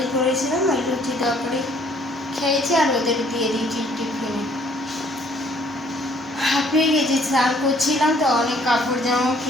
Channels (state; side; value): normal; both; correlation 0.61